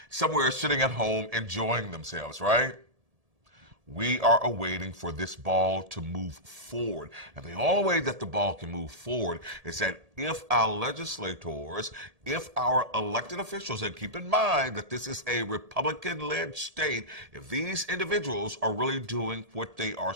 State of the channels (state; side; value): late; left; 1.7 ms